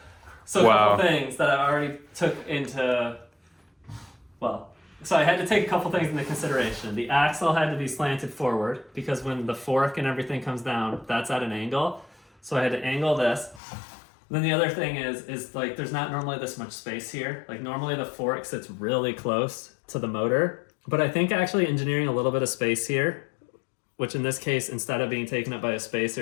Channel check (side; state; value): right; drops out; at 13.6 s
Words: So a Wow. couple things that I already took into... So I had to take a couple things into consideration. The axle had to be slanted forward because when the fork and everything comes down, that's at an angle. So I had to angle this. Then the other thing is like there's not normally this much space here. Like normally the fork sits really close to the motor, but I think actually engineering a little bit of space here, which in this case, instead of being taken up by a